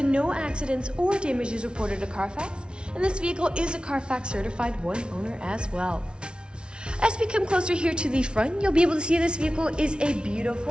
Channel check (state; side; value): late; left; 0.056 ms